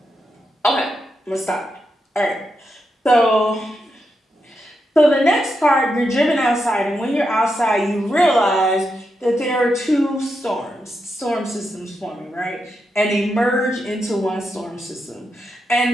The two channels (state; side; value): normal; both; correlation 0.85